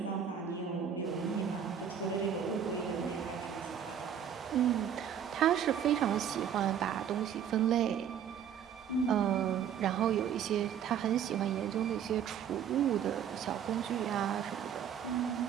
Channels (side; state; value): left; quieter; 8.6 dB